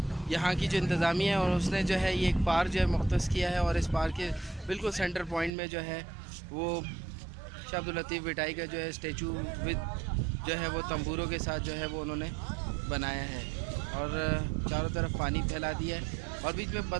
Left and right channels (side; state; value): left; drops out; at 5.5 s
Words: यहाँ की जो इंतज़ामिया है और उसने जो है ये एक पार्क जो है मुख्तस किया है और इस पार्क के बिल्कुल सेंटर पॉइंट में जो है वो शाह अब्दुल लतीफ़ भिटाई का जो है स्टैचू विद जो है वो तंबूरों के साथ जो है वो उन्होंने बनाया है और चारों तरफ पानी फैला दिया है और बीच में